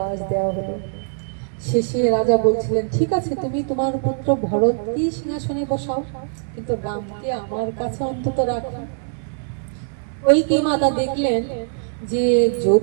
দেওয়া হলো। শেষে রাজা বলছিলেন ঠিক আছে তুমি তোমার পুত্র ভরতকে সিংহাসনে বসাও, কিন্তু রামকে আমার কাছে অন্তত রাখো। কইকি মাতা দেখলেন যে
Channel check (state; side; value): silent; left; digital silence